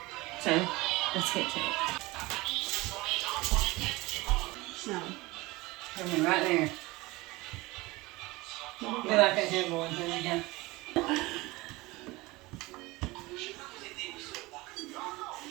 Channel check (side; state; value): left; quieter; 21.6 dB